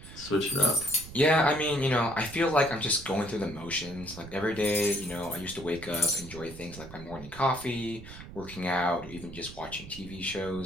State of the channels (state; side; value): noise; right; rumble, 14 dB below the sound